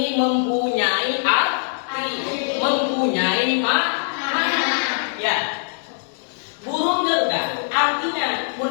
mempunyai arti, mempunyai makna. Ya, burung Garuda artinya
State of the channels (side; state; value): right; silent; digital silence